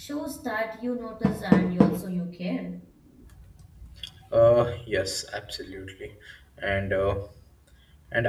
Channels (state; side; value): identical; both; correlation 1.00